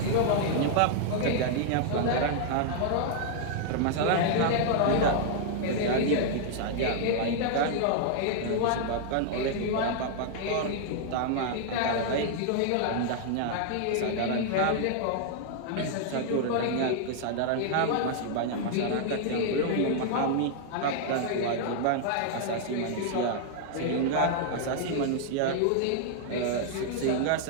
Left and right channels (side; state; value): both; different; correlation -0.01